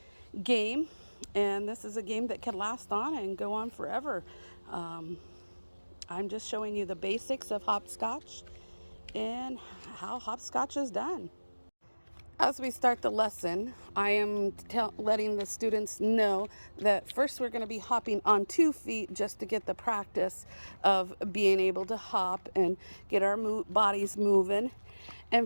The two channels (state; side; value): inverted; both; correlation -1.00